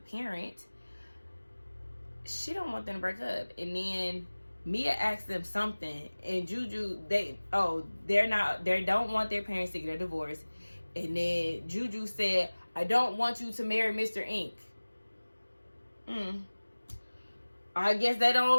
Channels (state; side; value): inverted; both; correlation -1.00